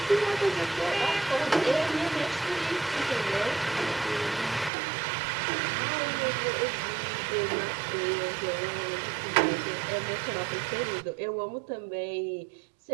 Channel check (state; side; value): drops out; left; at 4.7 s